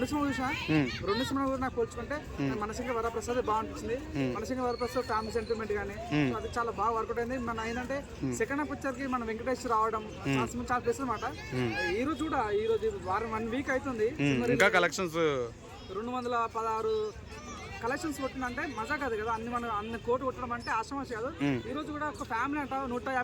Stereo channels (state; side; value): identical; both; correlation 1.00